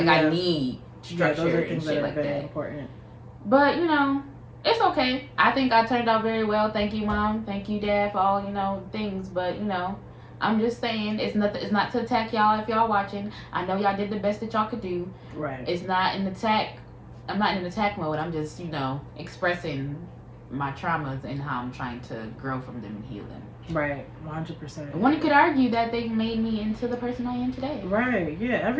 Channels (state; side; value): identical; both; correlation 1.00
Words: I need structure those are things and shit that are like very that. Important. But it's okay. I think I turned out very well. Thank you, Mom. Thank you, Dad, for all things. But I'm just saying it's not to attack y'all if y'all watching. I know y'all did the best that y'all could do. Right. It's not an attack. I'm not in an attack mode. I'm just expressing my traumas and how I'm trying to grow from them and heal them. Right, 100%. One could argue that they made me into the person I am today. Right, yeah.